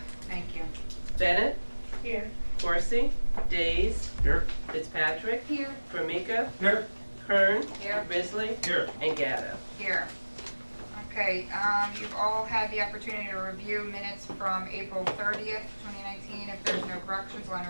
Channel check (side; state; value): both; inverted; correlation -1.00